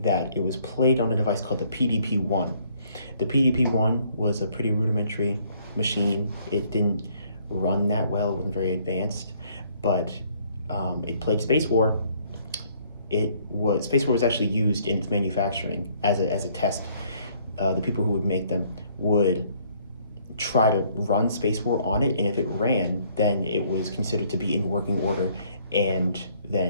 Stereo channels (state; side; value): inverted; both; correlation -0.63